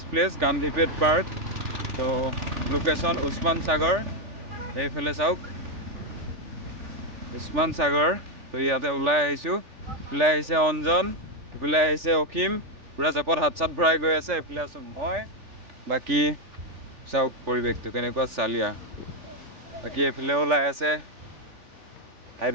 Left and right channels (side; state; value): left; late; 3.4 ms